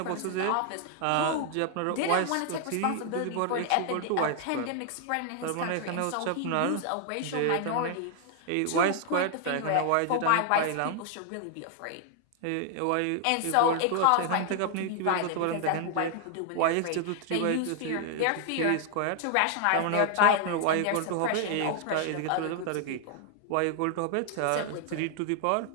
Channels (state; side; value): different; both; correlation 0.00